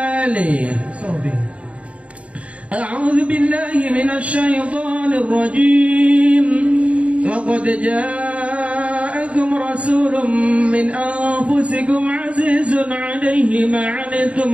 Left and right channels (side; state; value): left; late; 0.064 ms